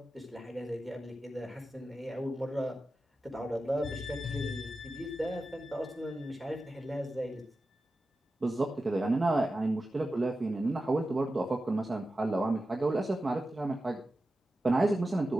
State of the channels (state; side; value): normal; both; correlation 0.92